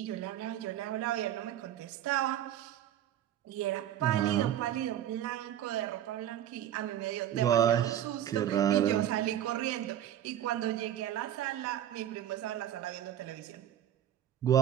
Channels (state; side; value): quieter; left; 11.2 dB